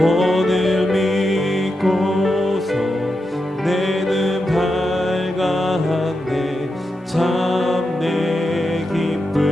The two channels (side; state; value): both; normal; correlation 0.87